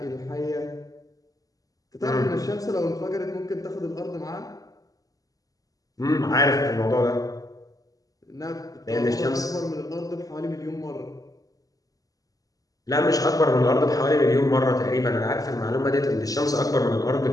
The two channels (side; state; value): right; late; 0.17 ms